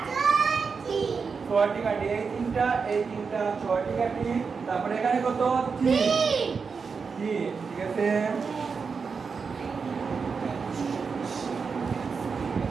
6টি কাঠি এই তিনটা 6টি কাঠি তারপরে এখানে কত 3 ঠিক আছে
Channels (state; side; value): quieter; left; 5.3 dB